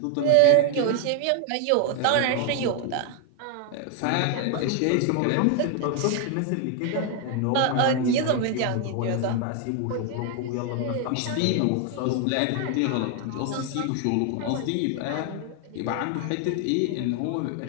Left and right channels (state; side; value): different; both; correlation 0.01